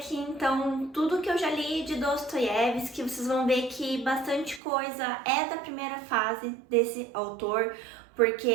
então tudo que eu já li de Dostoiévski. Vocês vão ver que bastante coisa é da primeira fase desse autor,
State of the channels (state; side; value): drops out; left; at 4.6 s